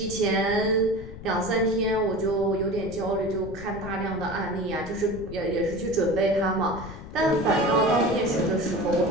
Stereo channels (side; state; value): left; noise; rumble, 13 dB below the sound